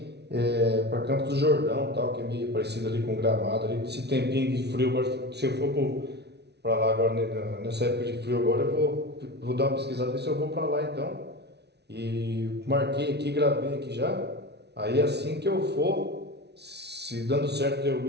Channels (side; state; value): left; late; 0.49 ms